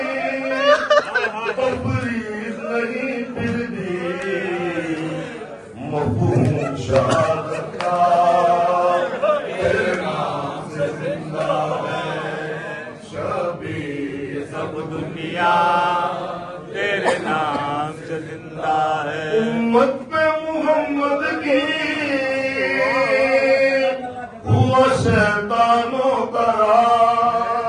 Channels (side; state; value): both; identical; correlation 1.00